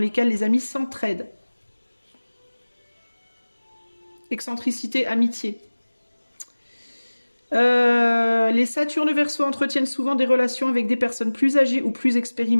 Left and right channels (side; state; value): both; inverted; correlation -1.00